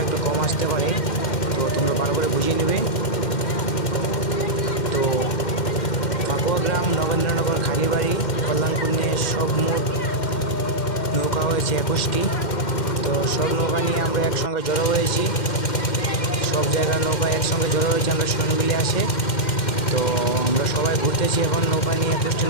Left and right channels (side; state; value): right; late; 2.1 ms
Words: একটু কম আসতে পারে, তো তোমরা ভালো করে বুঝিয়ে নেবে। তো ফাকুয়া গ্রাম, নগেন্দ্রনগর, খালিবাড়ি, কল্যাণপুর নিয়ে সব মোট নৌকা হয়েছে 21টি। তো সব নৌকা নিয়ে আমরা একসঙ্গে জড়ো হয়েছি। সব জায়গার নৌকা একসঙ্গে জড়ো হয়েছে আমরা সনবিলে আসে। তো আমরা সবাই ঘুরতেছি এখন নৌকা নিয়ে, 21টি